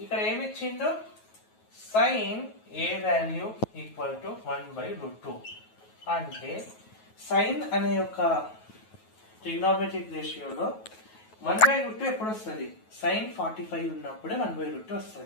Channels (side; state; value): right; late; 9.3 ms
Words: ఇక్కడ ఏమి ఇచ్చిందో sin A value equal to 1/√2. అంటే సైన్ అనే యొక్క ట్రిగ్నోమెట్రిక్ రేషియోలో 1/√2 ఎప్పుడు వస్తుంది? sin 45 ఉన్నప్పుడే 1/√2